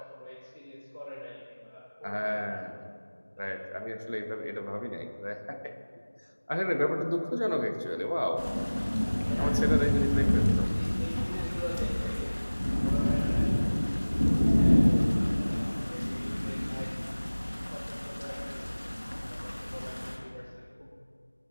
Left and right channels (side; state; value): both; inverted; correlation -1.00